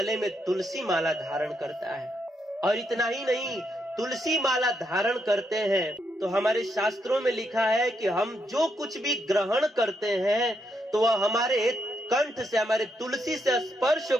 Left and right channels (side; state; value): both; normal; correlation 0.79